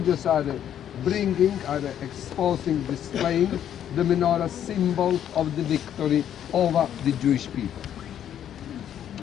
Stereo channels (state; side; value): quieter; right; 10.1 dB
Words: are exposing, displaying the menorah, symbol of the victory over the Jewish people.